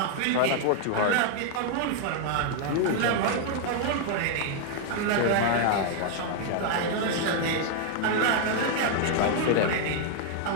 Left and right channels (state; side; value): different; both; correlation 0.00